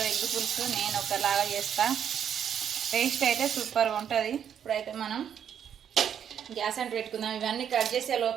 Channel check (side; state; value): left; quieter; 8.7 dB